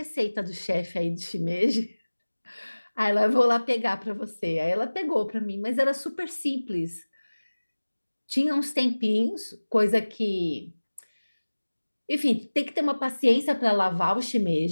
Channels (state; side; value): inverted; both; correlation -1.00